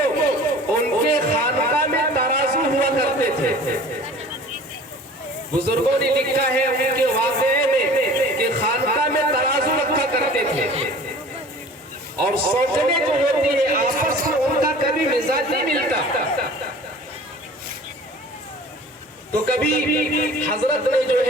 ان کے خانقاہ میں ترازو ہوا کرتے تھے. بزرگوں نے لکھا ہے ان کے واقعے میں کہ خانقاہ میں ترازو رکھا کرتے تھے، اور سوچنے جو ہوتی ہے آپس میں ان کا کبھی مزاج نہیں ملتا. تو کبھی حضرت نے جو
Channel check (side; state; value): both; normal; correlation 0.44